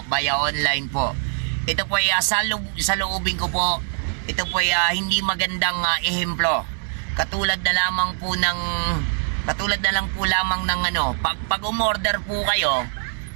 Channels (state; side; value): silent; left; 60 dB below the other